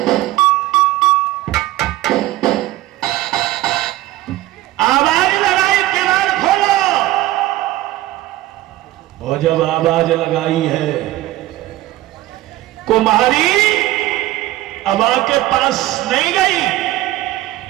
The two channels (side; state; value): left; quieter; 16.2 dB